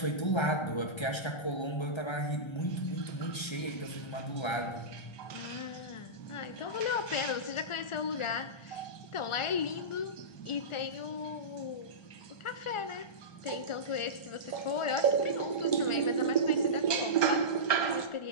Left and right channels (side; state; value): right; late; 1.3 ms